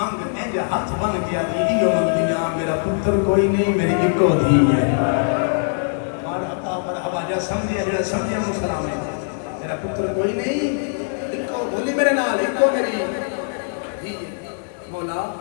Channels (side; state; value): right; silent; digital silence